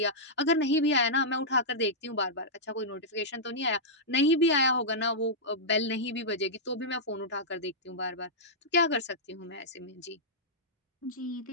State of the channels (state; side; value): normal; both; correlation -0.11